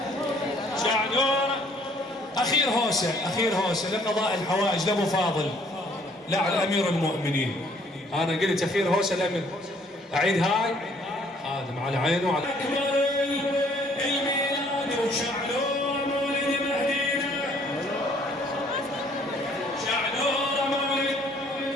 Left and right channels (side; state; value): both; normal; correlation 0.61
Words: شعنوره أخير هوسة لقضاء الحوائج لأبو فاضل لا على أمير المؤمنين أنا قلت أخير هوسة الأمير أعيد هاي آدم على عينه وعلى أكبر الميلاد وشعنوره مولد مهدينا شعنوره مولد